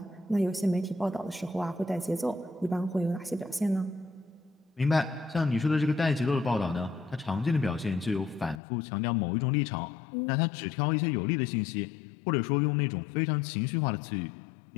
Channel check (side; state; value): right; drops out; at 8.6 s